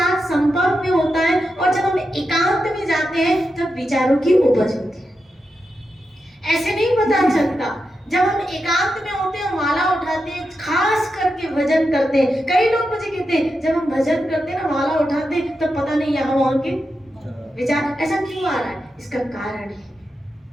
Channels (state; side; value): normal; both; correlation 0.88